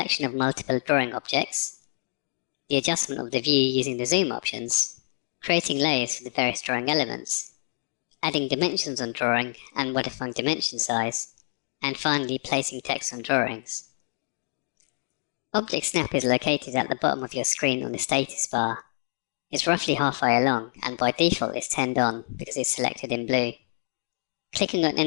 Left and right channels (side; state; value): right; silent; digital silence